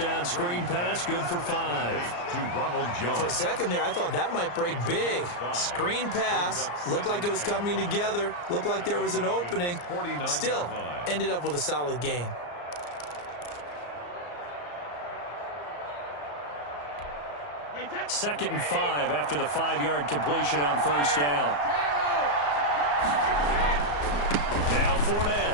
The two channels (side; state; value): right; late; 34 ms